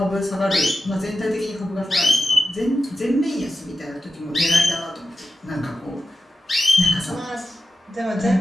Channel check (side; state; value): both; normal; correlation 0.92